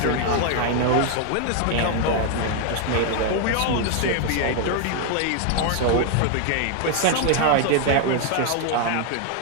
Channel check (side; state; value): both; different; correlation 0.00